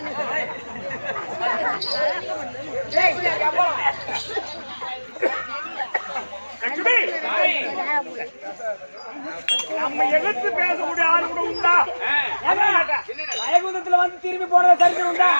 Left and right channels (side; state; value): both; inverted; correlation -1.00